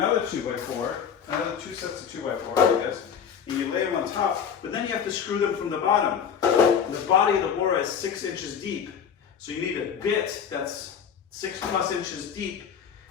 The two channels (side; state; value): right; quieter; 7.6 dB